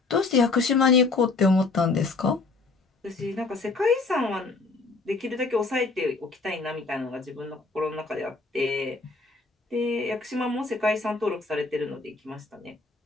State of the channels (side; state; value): right; quieter; 3.8 dB